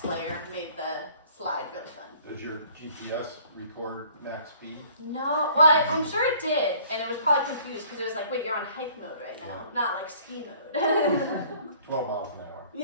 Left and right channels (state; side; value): inverted; both; correlation -0.55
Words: layer, made the slide really fun. Does your GPS record max speed? No, well, I'm sure it did, and it was probably confused because it was like, wait, you're on hike mode right now, not like ski mode. 12 miles an hour.